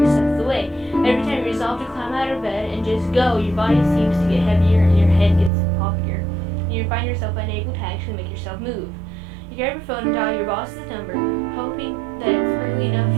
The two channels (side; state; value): left; drops out; at 5.5 s